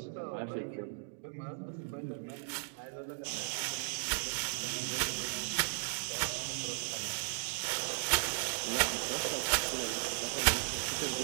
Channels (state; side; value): silent; left; digital silence